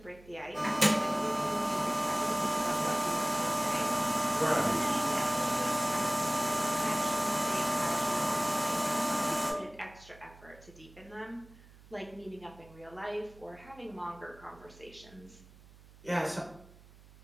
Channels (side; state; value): right; noise; hum, 23 dB below the sound